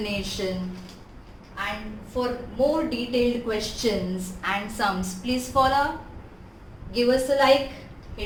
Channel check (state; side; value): identical; both; correlation 1.00